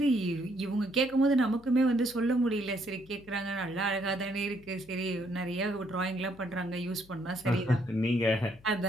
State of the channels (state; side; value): noise; left; hum, 25 dB below the sound